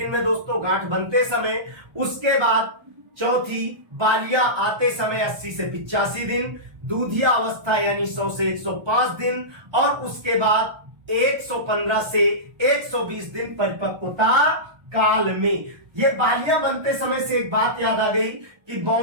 में दोस्तों गांठ बनते समय, उसके बाद चौथी बालियां आते समय 80 से 85 दिन, दूधिया अवस्था यानी 100 से 105 दिन, और उसके बाद 115 से 120 दिन परिपक्वता काल में। ये बालियां बनते समय से एक बात याद आ गई कि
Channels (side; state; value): left; late; 1.2 ms